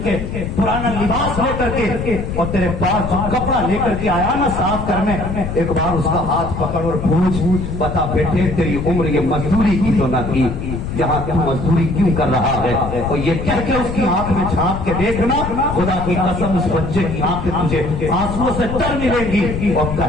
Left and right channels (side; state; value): left; noise; rumble, 6 dB below the sound